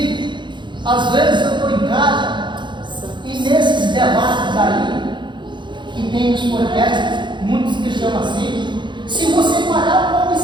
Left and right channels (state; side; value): late; left; 0.23 ms